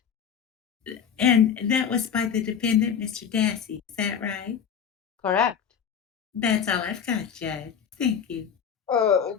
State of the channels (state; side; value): quieter; right; 7.7 dB